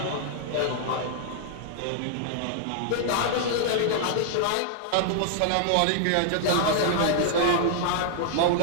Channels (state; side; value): different; both; correlation -0.01